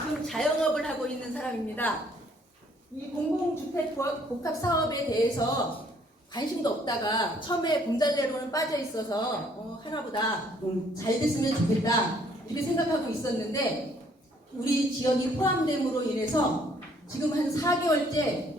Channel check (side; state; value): both; normal; correlation 0.63